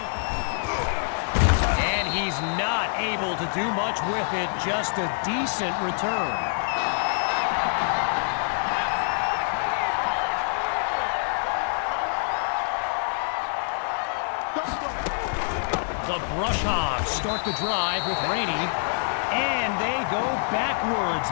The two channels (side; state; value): right; silent; digital silence